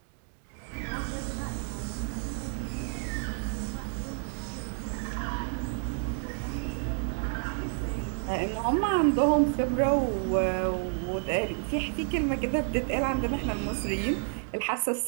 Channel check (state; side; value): silent; left; 58 dB below the other